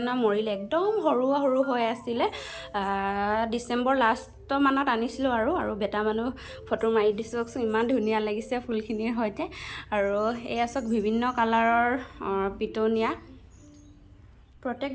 মৰিলে, একদম সৰু সৰু হৈ আছিলে। ডিচেম্বৰ লাষ্টমানত আনিছিলোঁ আৰু বেটা মানুহ ফটো মাৰি দিছোঁ, ইমান ধুনীয়া লাগিছে ফুলখিনিৰ সৈতে। আৰু এয়া চাওক বিভিন্ন কালাৰৰ পিটনিয়া। প্ৰত্যেক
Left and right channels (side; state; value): both; identical; correlation 1.00